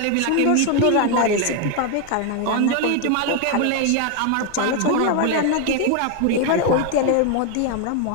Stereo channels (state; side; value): different; both; correlation 0.01